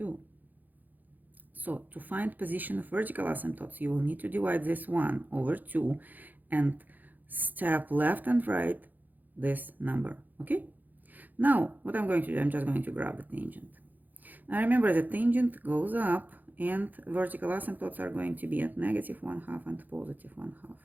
So to find position of vertical asymptotes, you will need to divide this 1 over 2 and step left and right this number, okay? Now, what I'm going to do, I'm just going to grab the tangent. Now remember, the tangent goes up and vertical asymptotes are going to be at negative 1/2 and positive 1/2.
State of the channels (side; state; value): left; late; 0.084 ms